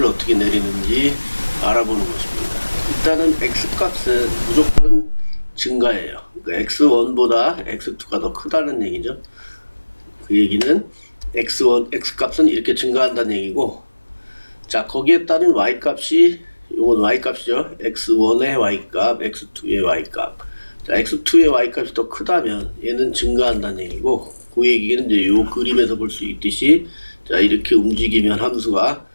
어떻게 내리는지 알아보는 것입니다. 일단은 x값은 무조건 증가예요. 그러니까 x1보다 x2가 더 크다는 얘기죠. 그 얘기는 x값은 이렇게 증가한다는 얘기고, 자, 거기에 따른 y값이, 요건 y값이죠. x1의 y값, x2의 y값. 자, x2의 y값이 더 크다면 얘는 증가한다는 얘기고, 그 얘기는 이제 요 그림에서 볼 수 있듯이, 자, 이렇게 움직이면 함수가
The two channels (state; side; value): inverted; both; correlation -1.00